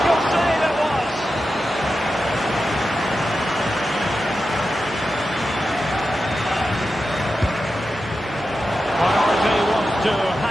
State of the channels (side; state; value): both; normal; correlation 0.91